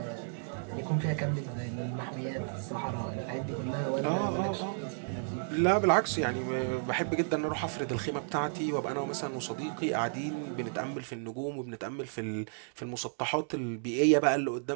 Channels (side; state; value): left; silent; digital silence